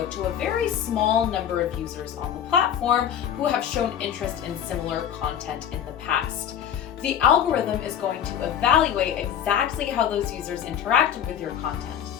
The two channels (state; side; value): quieter; right; 9.3 dB